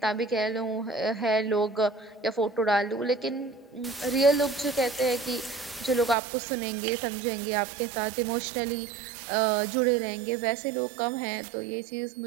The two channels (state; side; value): drops out; left; at 6.2 s